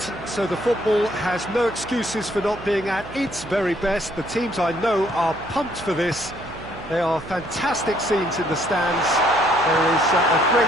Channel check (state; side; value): noise; right; hum, 16 dB below the sound